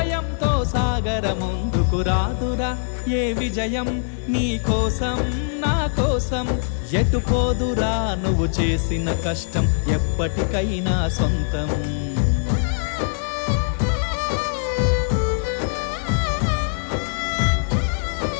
సాగర ముందుకు రాదురా ఏ విజయం నీ కోసం నా కోసం ఎటుపోదురా నువ్వు చేసిన కష్టం ఎప్పటికైనా సొంతం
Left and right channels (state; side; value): silent; right; 64 dB below the other